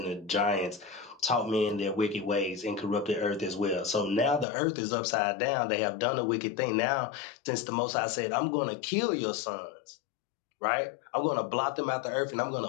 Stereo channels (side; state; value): right; drops out; at 4.5 s